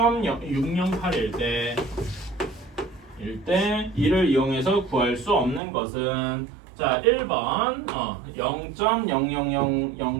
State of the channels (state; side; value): drops out; left; at 5.6 s